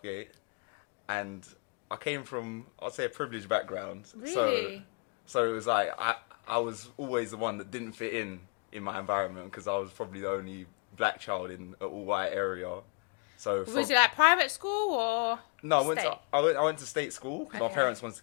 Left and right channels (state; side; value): quieter; right; 35.6 dB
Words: and I came from, I'd say, a privileged background. Really? So it was like I was always the one that didn't fit in my environment because I was probably the only black child in an all-white area. So was it like private school or? No, I went to state school because my parents wanted to